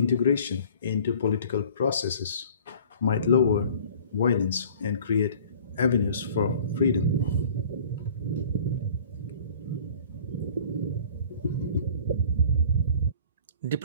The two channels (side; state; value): both; inverted; correlation -0.48